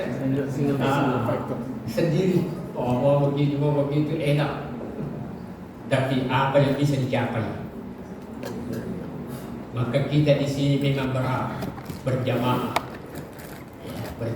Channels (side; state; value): both; identical; correlation 1.00